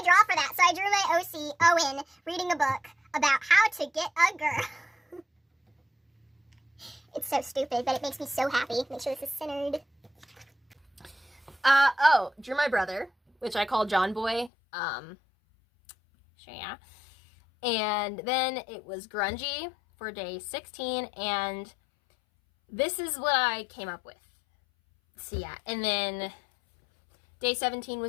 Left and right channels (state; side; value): drops out; right; at 14.5 s